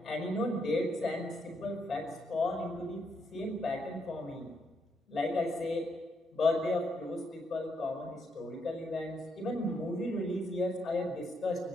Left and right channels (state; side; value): normal; both; correlation 0.77